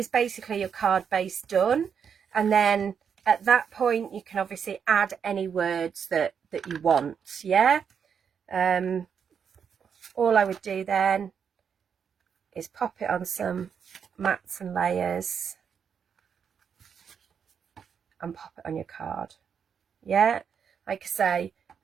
basically your card base done. And then at that point you can obviously add any words that you want, yeah. All I would do then is pop it on some mats and layers and pop it on your card, yeah. Like I say,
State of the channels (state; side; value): quieter; left; 7.2 dB